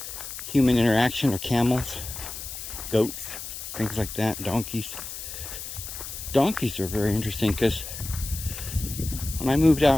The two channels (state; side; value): noise; left; hiss, 9 dB below the sound